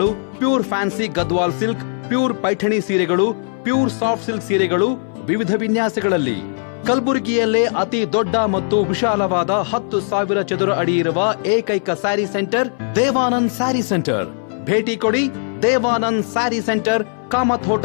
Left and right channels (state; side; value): silent; right; 61 dB below the other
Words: pure fancy Gadwal silk, pure Paithani ಸೀರೆಗಳು, ಪ್ಯೂರ್ ಸಾಫ್ಟ್ ಸಿಲ್ಕ್ ಸೀರೆಗಳು ವಿವಿಧ ವಿನ್ಯಾಸಗಳಲ್ಲಿ. ಕಲಬುರಗಿಯಲ್ಲೇ ಅತಿ ದೊಡ್ಡ ಮತ್ತು ವಿಶಾಲವಾದ 10,000 ಚದುರ ಅಡಿ ಇರುವ ಏಕೈಕ ಸ್ಯಾರಿ ಸೆಂಟರ್ ದೇವಾನಂದ್ ಸ್ಯಾರಿ ಸೆಂಟರ್. ಭೇಟಿ ಕೊಡಿ. ದೇವಾನಂದ್ ಸ್ಯಾರಿ ಸೆಂಟರ್, ಕಾಮತ್